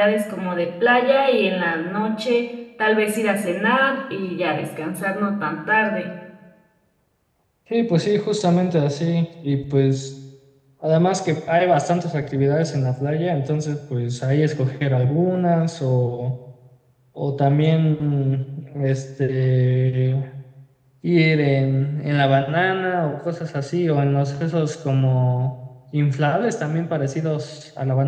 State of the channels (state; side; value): identical; both; correlation 1.00